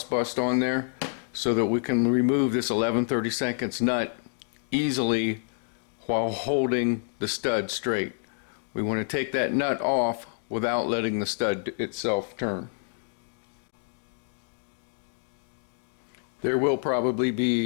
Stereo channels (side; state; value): right; silent; digital silence